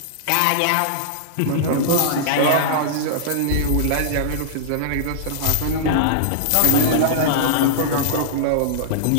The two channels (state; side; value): different; both; correlation -0.02